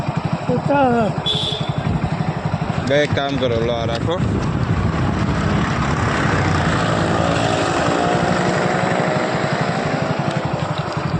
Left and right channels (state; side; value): identical; both; correlation 1.00